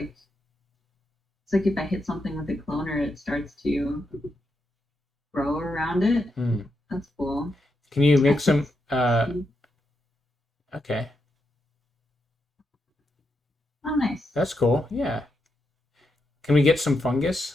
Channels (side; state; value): both; normal; correlation 0.84